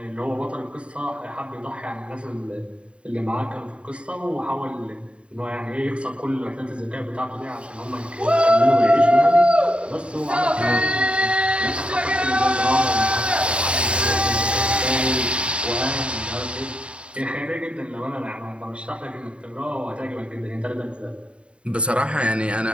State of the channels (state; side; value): late; left; 0.058 ms